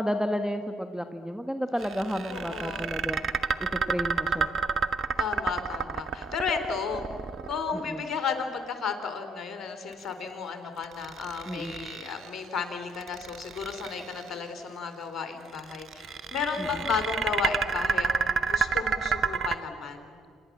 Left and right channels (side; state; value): both; normal; correlation 0.68